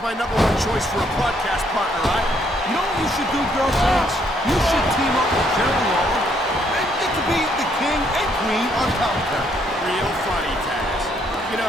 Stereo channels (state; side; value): normal; both; correlation 0.70